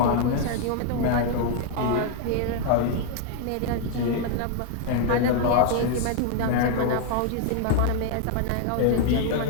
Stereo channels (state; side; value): different; both; correlation 0.00